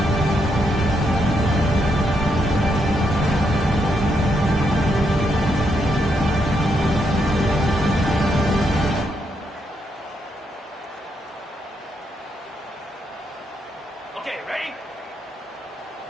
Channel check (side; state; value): both; normal; correlation 0.78